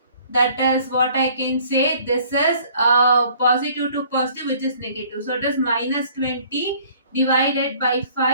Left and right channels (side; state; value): both; inverted; correlation -0.56